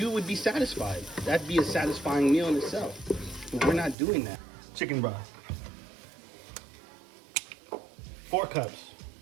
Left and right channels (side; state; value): left; drops out; at 4.0 s